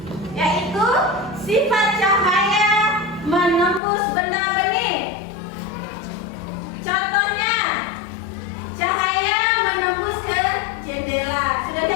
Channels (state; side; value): drops out; right; at 3.8 s